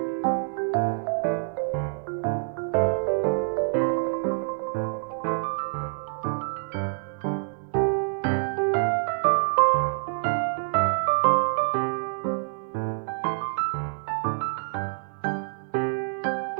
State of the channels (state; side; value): silent; left; digital silence